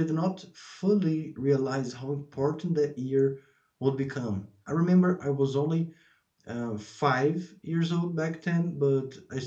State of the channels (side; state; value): both; identical; correlation 1.00